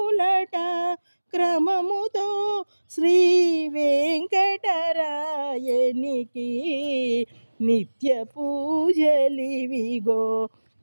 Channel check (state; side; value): inverted; both; correlation -1.00